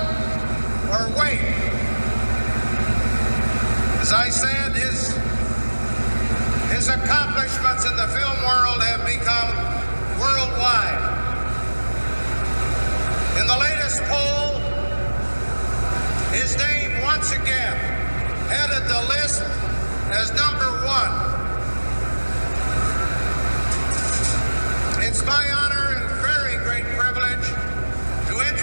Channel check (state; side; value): inverted; both; correlation -1.00